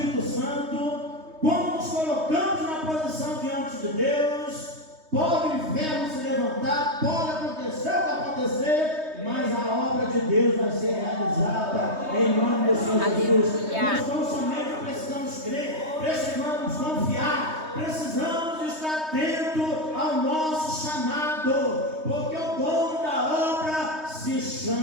Santo, quando nos colocamos na posição diante de Deus, pode o inferno se levantar, pode acontecer o que acontecer, mas a obra de Deus vai ser realizada em nome do Senhor Jesus. Nós não somente precisamos crer, precisamos confiar, precisamos estar atentos ao nosso chamado, porque o dono da obra se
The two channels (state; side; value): late; left; 3.2 ms